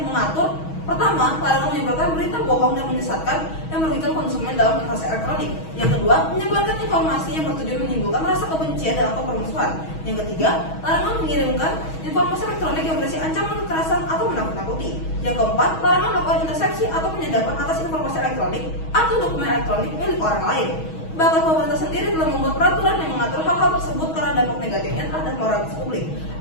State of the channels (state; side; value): late; right; 6.3 ms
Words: mengatur, pertama, larangan menyebarkan berita bohong dan menyesatkan yang merugikan konsumen dalam transaksi elektronik. Yang kedua, menyebarkan informasi yang bertujuan menimbulkan rasa kebencian dan atau permusuhan. Yang ketiga, larangan mengirimkan informasi elektronik yang berisi ancaman kekerasan atau menakut-nakuti. Yang keempat, larangan melakukan intersepsi atau penyadapan atas informasi elektronik atau dokumen elektronik milik orang lain. Bahkan pemerintah sendiri telah membuat peraturan yang mengatur hal-hal tersebut karena dampak negatifnya terhadap moralitas publik